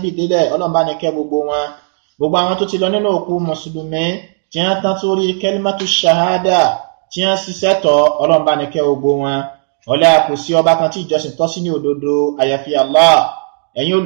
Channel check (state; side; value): silent; left; digital silence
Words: délẹ̀, Ọlọ́run bá ní kẹ́ gbogbo wọn. Gbogbo àwọn tó ti lọ nínú òkú mùsùlùmí, tí wọ́n tán sórí kalimatu shahada, tí wọ́n ṣiṣẹ́ tọ̀, Ọlọ́run bá ní kẹ́ gbogbo wọn. Ọlá kò sí ọba kan tí ìjọsìn tọ́ sí ní òdodo àyàfi Allah. Ẹ̀yin